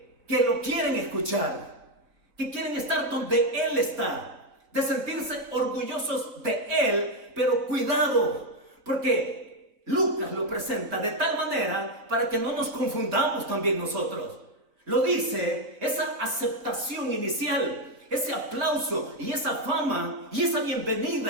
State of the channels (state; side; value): late; left; 4.6 ms